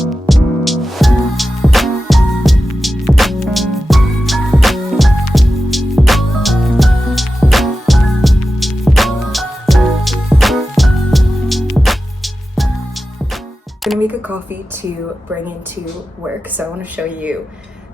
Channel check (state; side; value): normal; both; correlation 0.92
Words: I'm gonna make a coffee to bring into work, so I want to show you